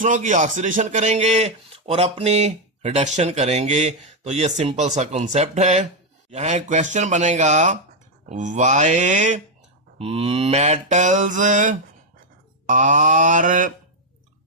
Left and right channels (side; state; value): both; normal; correlation 0.01